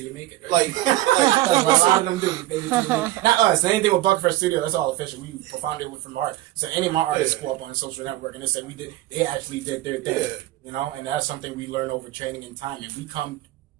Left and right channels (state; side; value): quieter; left; 16.0 dB